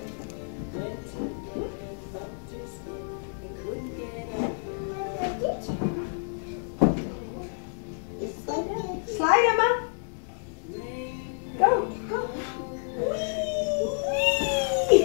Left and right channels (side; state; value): right; silent; 59 dB below the other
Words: Slide, Emma. Go.